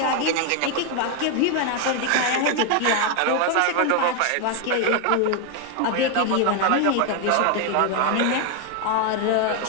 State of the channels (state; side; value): different; both; correlation 0.01